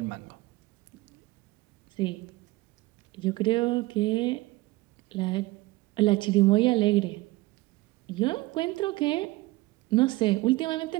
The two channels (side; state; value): left; quieter; 20.2 dB